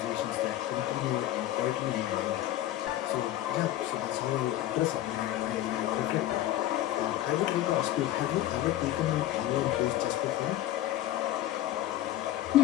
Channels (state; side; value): quieter; right; 13.8 dB